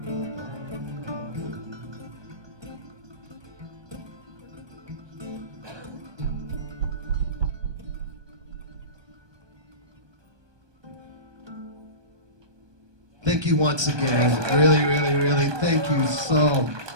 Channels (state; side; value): late; left; 1.2 ms